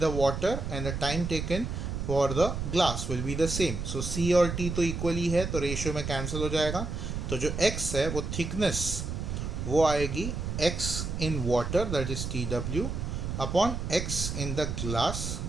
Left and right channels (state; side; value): noise; right; rumble, 4 dB below the sound